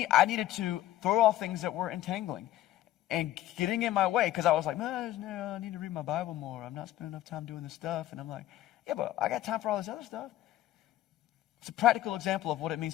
I needed to throw off things that were entangling and getting in my way because I was like, man, I need to read my Bible more. I'm not spending enough time doing this stuff. And I'm like, yeah, but I got time for all this other stuff. It's a practical example of what it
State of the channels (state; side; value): quieter; right; 14.1 dB